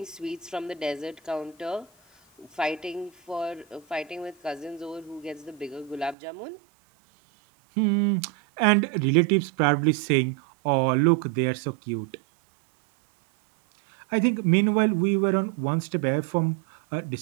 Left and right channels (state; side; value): drops out; left; at 6.2 s